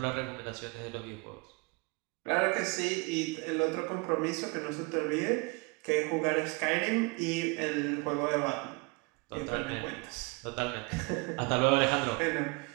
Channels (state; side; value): quieter; left; 28.8 dB